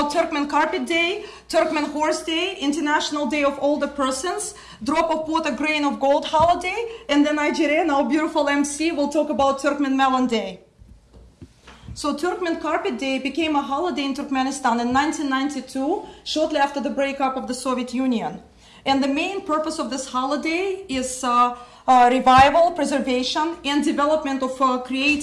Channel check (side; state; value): both; identical; correlation 1.00